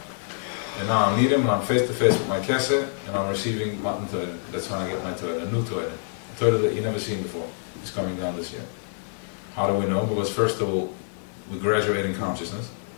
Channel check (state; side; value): silent; right; digital silence